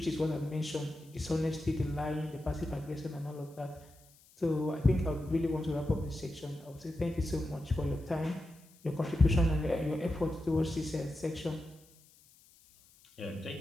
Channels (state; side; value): noise; left; hiss, 27 dB below the sound